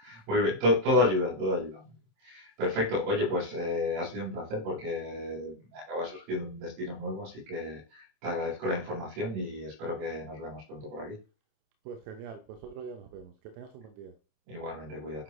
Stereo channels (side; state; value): left; late; 27 ms